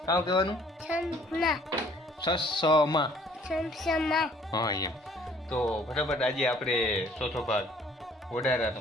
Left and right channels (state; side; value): normal; both; correlation 0.58